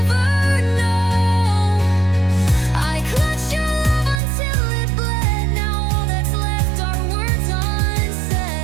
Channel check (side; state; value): left; drops out; at 4.2 s